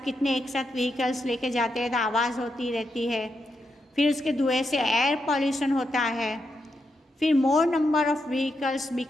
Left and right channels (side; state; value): both; normal; correlation 0.84